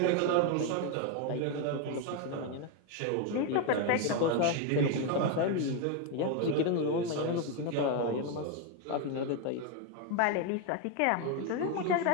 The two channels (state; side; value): different; both; correlation 0.02